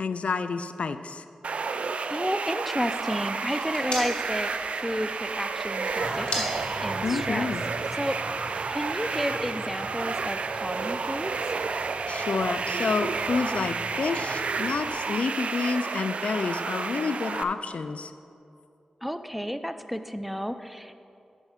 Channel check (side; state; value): both; normal; correlation 0.79